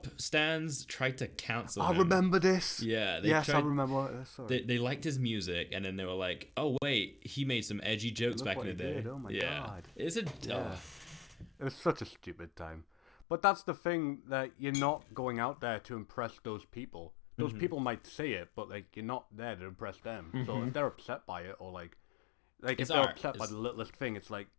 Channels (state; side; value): drops out; right; at 13.2 s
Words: stans tried to cancel him. I remember this. Yeah. I remember this. Sorry. They liked his music, and then they were like, oh, wait, he made some edgy jokes back in the day. Oh, my God. It's a... It was such a stupid time. But that's the thing, that you're not going out there to impress those people. Those people might say it, but like you're not there to impress them. So if they're upset by it, or like if they're upset by the littlest thing, it's like,